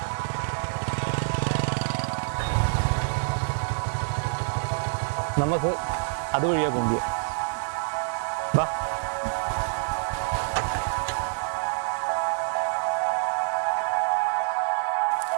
നമുക്ക് അതുവഴിയാ പോകുക. വാ.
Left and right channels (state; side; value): silent; left; digital silence